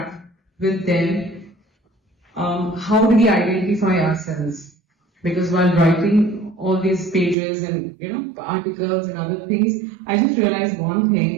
with them. How do we identify ourselves? Because while writing all these pages and articles and other things, I just realized one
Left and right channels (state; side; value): drops out; left; at 7.4 s